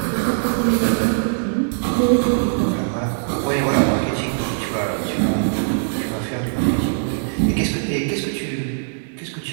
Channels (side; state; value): left; silent; digital silence